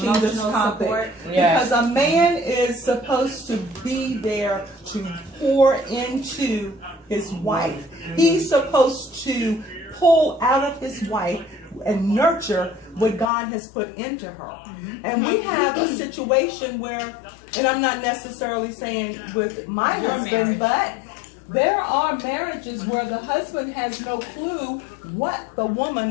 this topic, because a man is supposed to be there to pour into his wife. He's supposed to pull out of his wife and nurture what God has put into her. And we have a situation where, and I'm not necessarily saying with my husband, but there are marriages where the husband has no clue what the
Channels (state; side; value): drops out; right; at 13.3 s